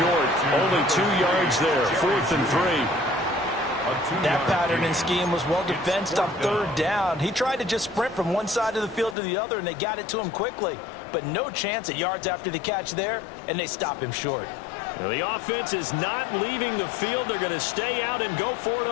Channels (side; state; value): right; drops out; at 9.2 s